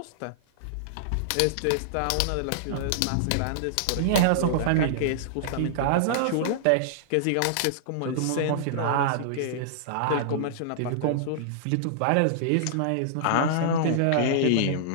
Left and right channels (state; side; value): different; both; correlation -0.01